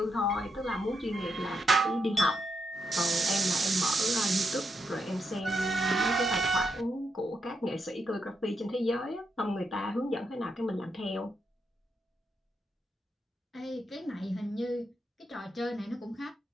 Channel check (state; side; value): normal; both; correlation 0.82